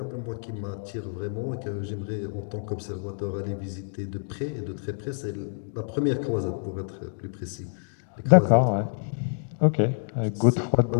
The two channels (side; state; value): right; silent; digital silence